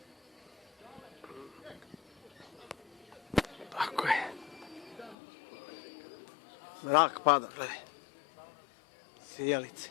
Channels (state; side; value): drops out; right; at 5.2 s